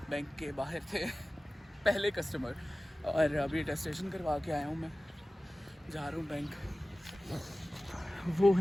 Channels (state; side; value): normal; both; correlation 0.97